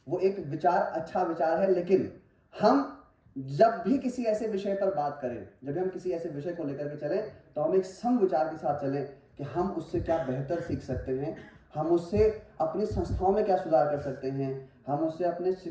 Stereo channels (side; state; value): both; identical; correlation 1.00